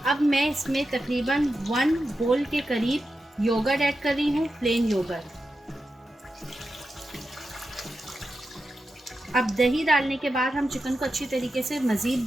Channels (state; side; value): normal; both; correlation 0.90